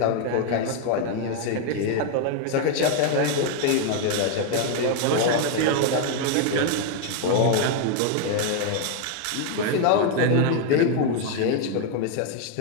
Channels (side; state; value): both; different; correlation 0.00